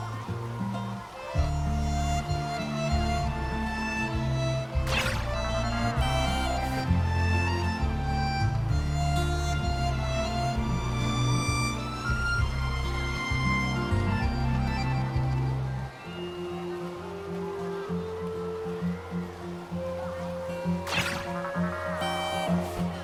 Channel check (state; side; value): identical; both; correlation 1.00